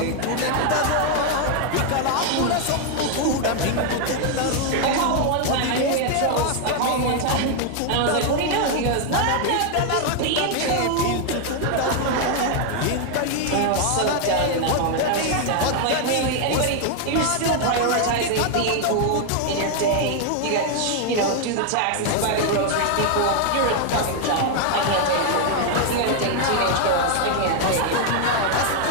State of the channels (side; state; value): both; different; correlation 0.00